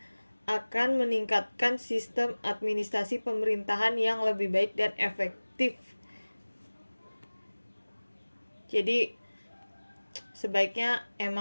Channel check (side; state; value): both; inverted; correlation -1.00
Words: akan meningkatkan sistem administrasi pemerintahan yang lebih baik dan efektif. Jadi sebaiknya